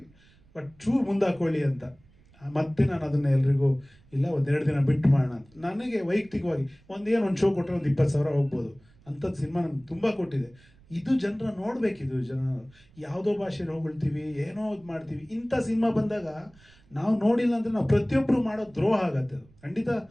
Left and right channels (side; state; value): right; noise; rumble, 28 dB below the sound